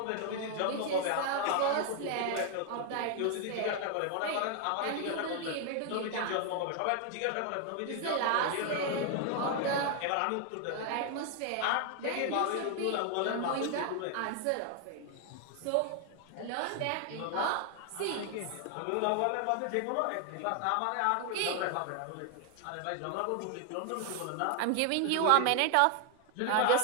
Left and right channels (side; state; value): both; different; correlation 0.00